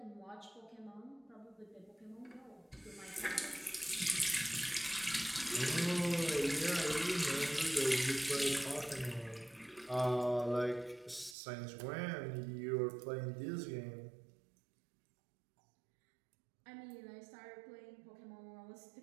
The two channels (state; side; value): drops out; left; at 11.4 s